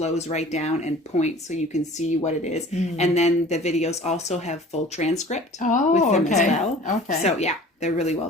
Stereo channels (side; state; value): both; normal; correlation 0.45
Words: right down and points so you can see what it is. And then the videos also have full transcript Oh, with them okay. as well. Okay. So yeah, they're really well